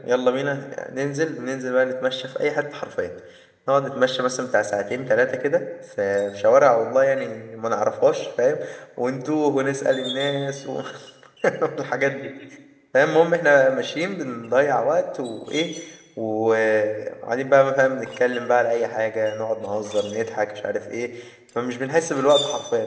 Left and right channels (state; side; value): identical; both; correlation 1.00